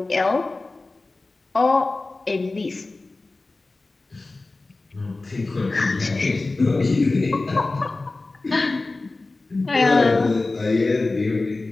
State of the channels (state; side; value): quieter; right; 3.3 dB